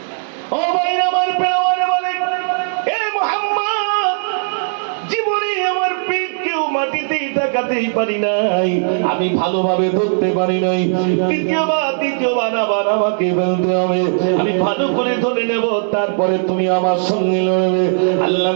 ও ভাইরা আমার, পেওয়ারে বলে, এ মুহাম্মদ, জীবনে আমার পিঠ কেউ মাটিতেই তাকাতেই পারি নাই, আমি ভালোভাবে ধরতে পারি নাই। দ্বিতীয়বার আবার আমাকে ফেলতে হবে, আমি ভালো করে ধরে নেব, তারপরে তুমি আমার সঙ্গে লড়বে।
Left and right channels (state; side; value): silent; left; digital silence